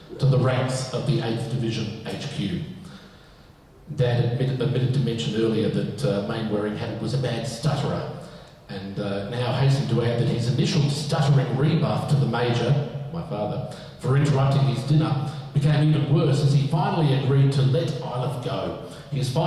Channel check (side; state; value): both; identical; correlation 1.00